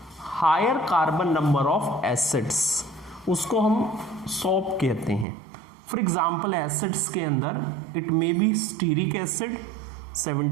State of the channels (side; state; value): left; drops out; at 5.2 s